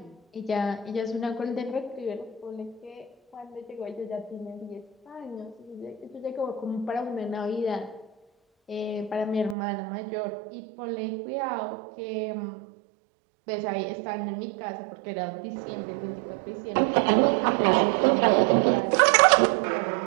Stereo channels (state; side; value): drops out; left; at 9.6 s